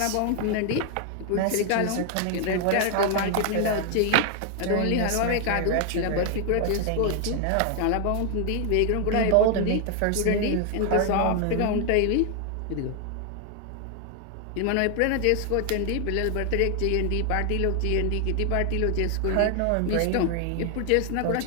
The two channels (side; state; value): both; different; correlation 0.00